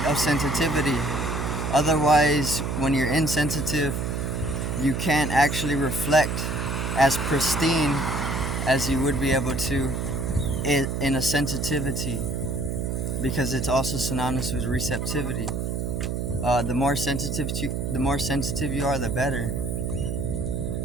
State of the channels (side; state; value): right; noise; hum, 2 dB below the sound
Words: of sensitivity. Otherwise, when you're insensitive, you can't actually reflect as pristine as you would be able to in a sensitivity, because it's also synonymous with receptivity. The more sensitive you are, the better.